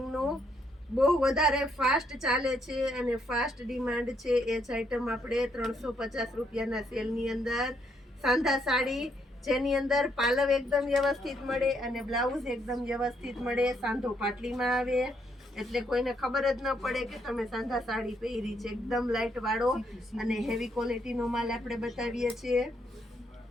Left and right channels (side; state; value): both; normal; correlation 0.74